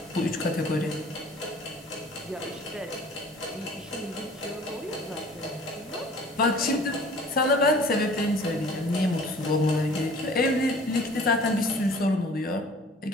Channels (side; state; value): both; normal; correlation 0.49